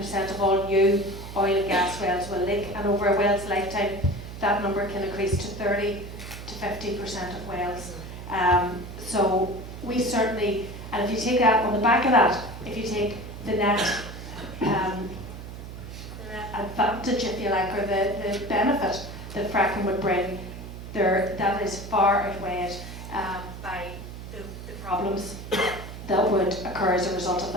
of all new oil and gas wells will leak, and over a well's lifetime that number can increase to 30 to 50% of wells. So we certainly, and if you take that on the back of that, if you take the net advantage, if you like, or the benefit that fracking would bring, that is far outweighed by the problems that would occur as a result of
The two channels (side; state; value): right; noise; hum, 11 dB below the sound